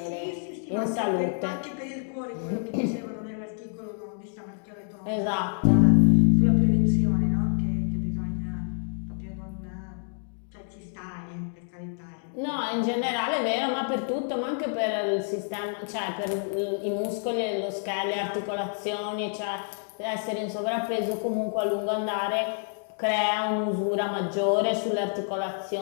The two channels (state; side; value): silent; right; 60 dB below the other